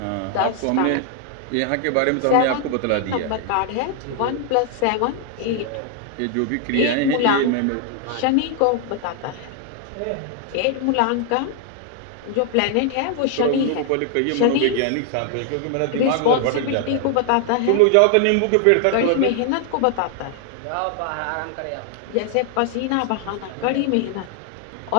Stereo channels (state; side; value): different; both; correlation 0.00